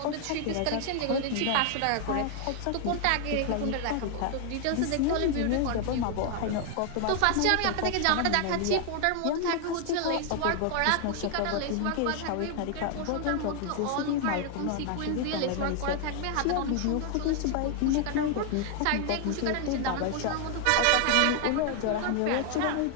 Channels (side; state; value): both; different; correlation 0.00